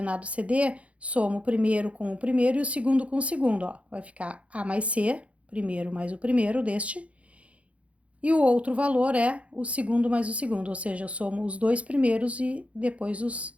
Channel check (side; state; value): left; late; 0.063 ms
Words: CD, somo o primeiro com o primeiro e o segundo com o segundo. Ó. Vai ficar A mais C, primeiro mais o primeiro deste, e o outro valor é o segundo mais o segundo, ou seja, eu somo os dois primeiros e depois